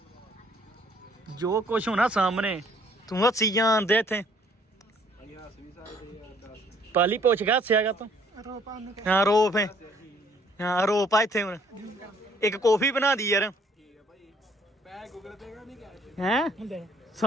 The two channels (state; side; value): normal; both; correlation 0.62